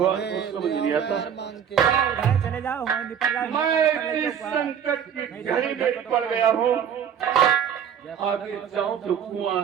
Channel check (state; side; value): quieter; left; 8.3 dB